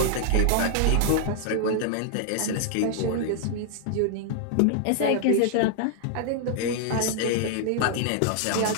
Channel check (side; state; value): both; different; correlation 0.00